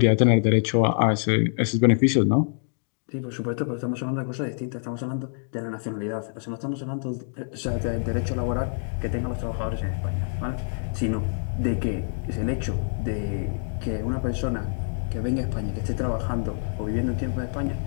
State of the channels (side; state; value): right; silent; digital silence